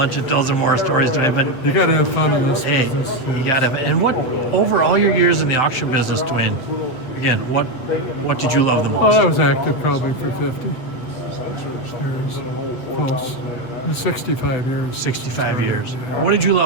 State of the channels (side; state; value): right; late; 8.0 ms